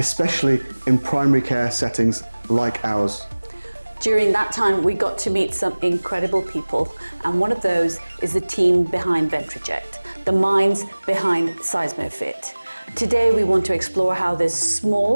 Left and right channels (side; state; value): both; inverted; correlation -1.00